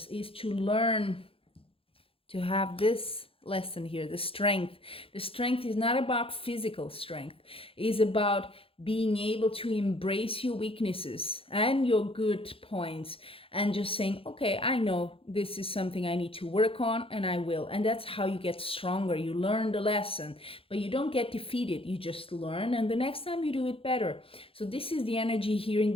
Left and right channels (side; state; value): right; late; 0.27 ms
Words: is to learn to have this lesson here, the strength. The strength is not about physical strength. It is about being able to embrace your weaknesses and your good points, and just saying, okay, I know this is something I need to work on, and I will. And that's how you get stronger. You learn the lesson, but you don't get defeated. You just learn, and the next time you do it better. So this is the energy here in